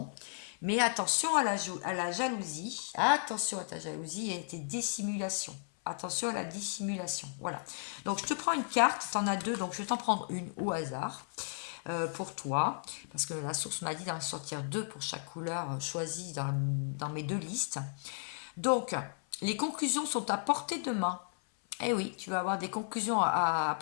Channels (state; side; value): silent; right; 55 dB below the other